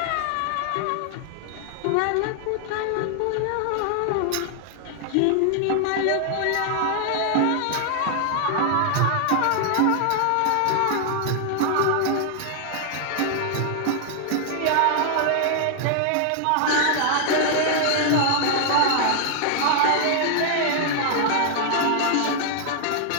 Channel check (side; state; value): both; different; correlation 0.00